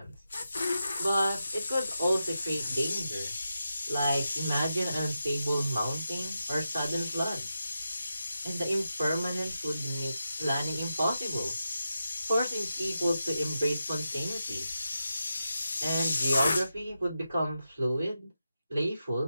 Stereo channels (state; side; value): inverted; both; correlation -0.89